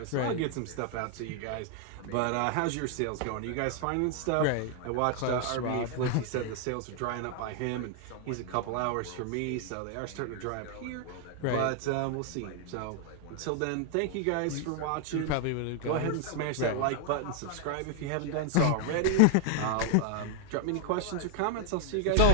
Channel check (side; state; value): both; different; correlation 0.00